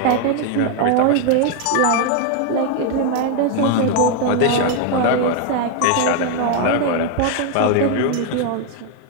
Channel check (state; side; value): different; both; correlation 0.01